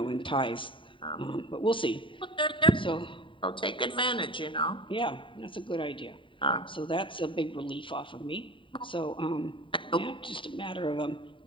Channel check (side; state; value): right; late; 0.25 ms